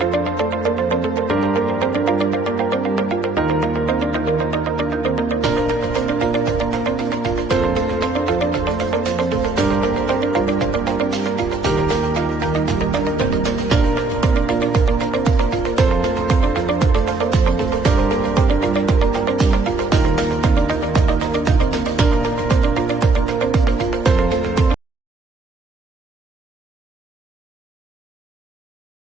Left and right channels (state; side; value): quieter; left; 3.2 dB